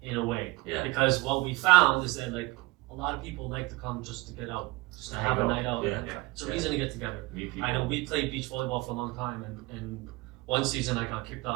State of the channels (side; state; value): left; quieter; 22.3 dB